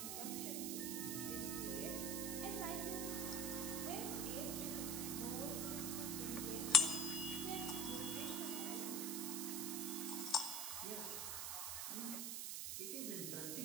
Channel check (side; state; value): right; noise; hiss, 1 dB below the sound